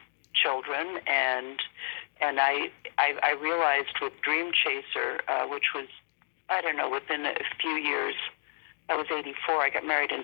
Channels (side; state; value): right; silent; digital silence